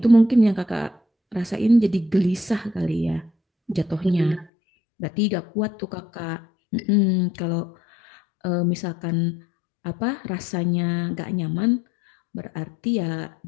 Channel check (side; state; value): right; drops out; at 4.5 s